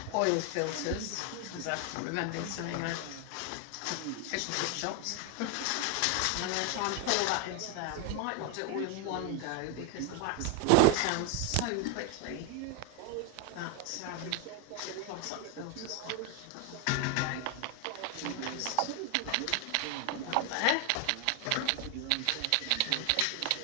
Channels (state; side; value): different; both; correlation 0.01